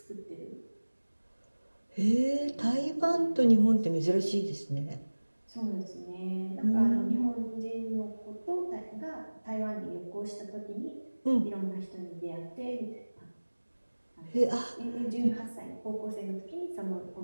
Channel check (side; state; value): both; inverted; correlation -1.00